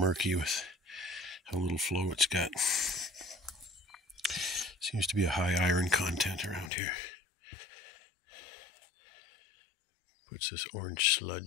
with how little flow it's got. Seems to be a high iron content around here. Puts this orange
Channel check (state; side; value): drops out; right; at 6.7 s